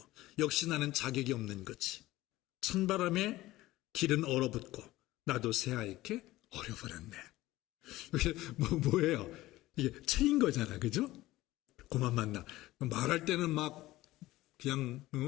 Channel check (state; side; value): quieter; right; 17.3 dB